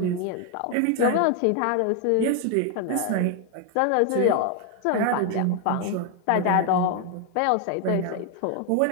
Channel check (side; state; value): both; different; correlation 0.00